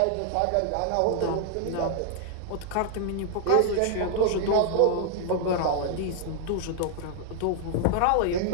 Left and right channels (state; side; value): different; both; correlation 0.00